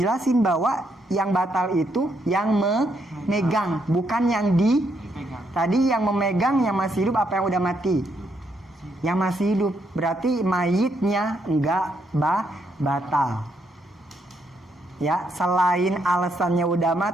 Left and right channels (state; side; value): normal; both; correlation 0.76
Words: bahwa yang batal itu yang memegang, bukan yang tadi yang memegang yang masih hidup apa yang udah mati? Yang masih hidup, berarti mayitnya enggak batal. Ya, selain alasannya udah